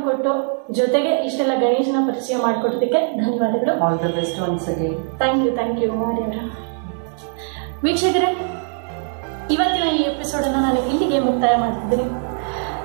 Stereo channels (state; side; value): silent; left; 57 dB below the other